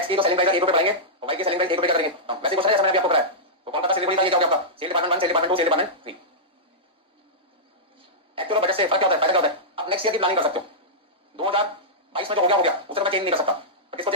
की तो सेलिंग प्राइस ₹1 बढ़ाएंगे और वाई की सेलिंग प्राइस ₹1 कर देंगे। वैसे क्वेश्चन है जैसा मैंने अभी आपको कराया, तो कौन सा सेल का ये क्या होगा आपका sale department 1, sale department 2, sale department 3। Actual budget से फर्क क्या होता है, फायदा क्या होता है, आप नेक्स्ट ईयर की प्लानिंग कर सकते हो। 2022 में जो हो गया उसे मैं चेंज नहीं कर सकता, तो किसको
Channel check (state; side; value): normal; both; correlation -0.12